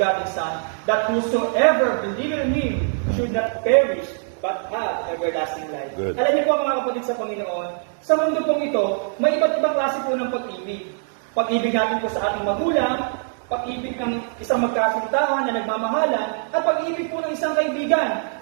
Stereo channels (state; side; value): silent; left; digital silence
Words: Son, that whosoever believeth in Him should not perish, but have everlasting life. Good. Alam niyo po mga kapatid sa Panginoon, sa mundo pong ito, may iba't ibang klase po ng pag-ibig. Pag-ibig natin po sa ating magulang, pag-ibig ng isang magkasintahan na nagmamahalan, at pag-ibig po ng isang kaibigan.